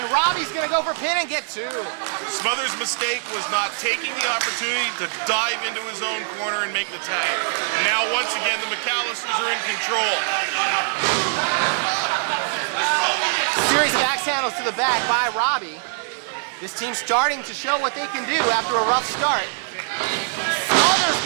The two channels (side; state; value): left; silent; digital silence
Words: Robbie's gonna go for pin and get 2. Smothers' mistake was not taking the opportunity to dive into his own corner and make the tag. Now, once again, the MacAllisters are in control. Series of axe handles to the back by Robbie. This team's starting to show what they can do after a rough start. Smothers